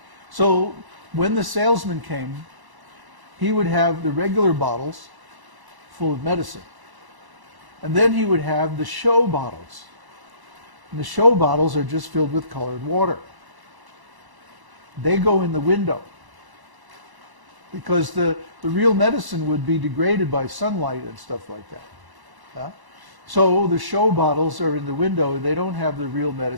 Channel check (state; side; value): late; left; 1.0 ms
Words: So when the salesman came, he would have the regular bottles full of medicine. And then he would have the show bottles. And the show bottles are just filled with colored water. They go in the window because the real medicine would be degraded by sunlight and stuff like that. Huh? So the show bottles are in the window. They don't have the real